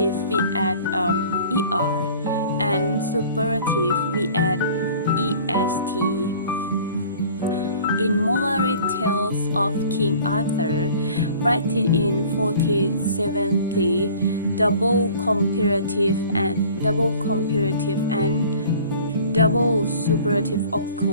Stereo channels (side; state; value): both; inverted; correlation -0.48